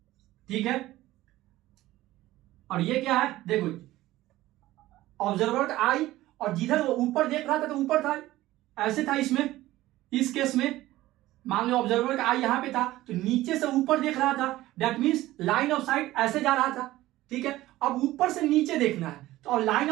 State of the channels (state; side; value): quieter; left; 16.3 dB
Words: ठीक है, और ये क्या है, देखो, ऑब्जर्वर का आई, और जिधर वो ऊपर देख रहा था तो ऊपर था, ऐसे था इसमें, इस केस में। मान लो ऑब्जर्वर का आई यहां पे था तो नीचे से ऊपर देख रहा था, that means line of site ऐसे जा रहा था, ठीक है। अब ऊपर से नीचे देखना है तो अब लाइन